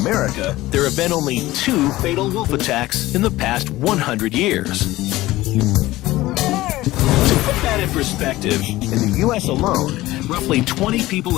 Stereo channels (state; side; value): quieter; right; 17.4 dB